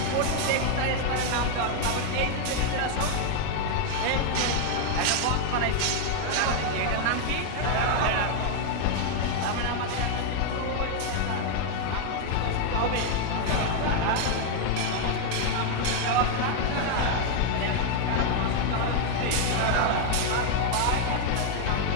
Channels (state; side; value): different; both; correlation 0.00